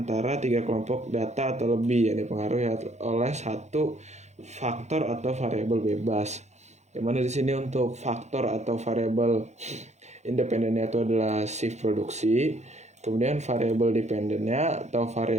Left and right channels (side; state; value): left; late; 0.33 ms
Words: 3 kelompok data atau lebih yang dipengaruhi oleh satu faktor atau variabel bebas. Yang mana di sini untuk faktor atau variabel independennya itu adalah shift produksi. Kemudian variabel dependennya atau